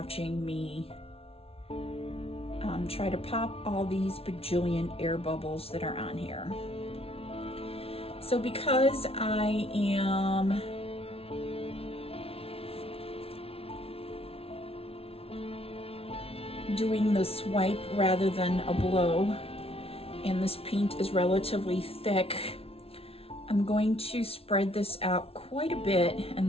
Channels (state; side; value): late; right; 0.28 ms